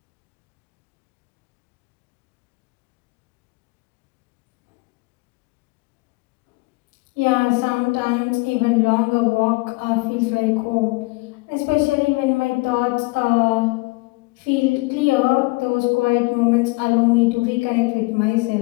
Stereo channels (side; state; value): right; quieter; 25.1 dB